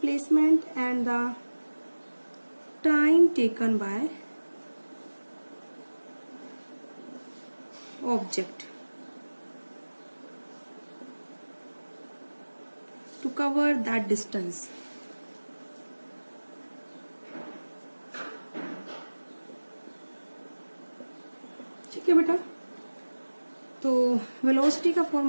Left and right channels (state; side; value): inverted; both; correlation -1.00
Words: and the time taken by object to cover that distance. ठीक है बेटा, तो वेलोसिटी का